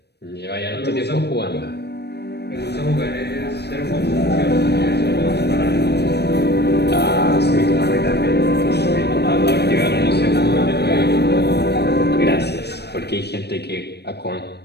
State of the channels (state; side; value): late; right; 0.48 ms